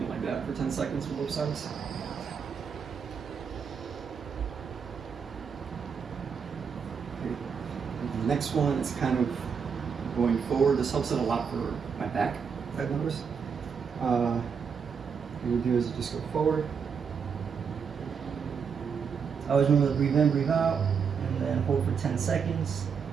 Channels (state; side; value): quieter; left; 6.4 dB